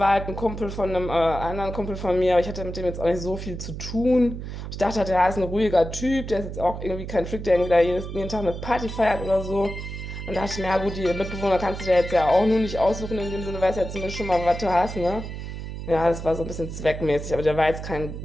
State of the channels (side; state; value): right; noise; hum, 8 dB below the sound